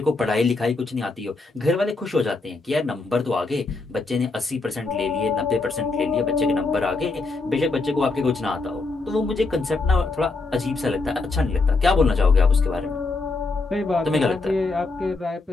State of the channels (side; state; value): right; quieter; 3.6 dB